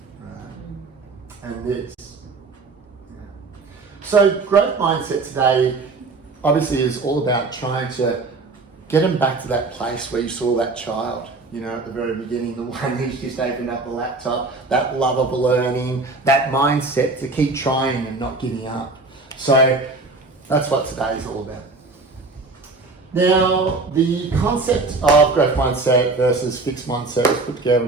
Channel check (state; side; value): quieter; left; 3.6 dB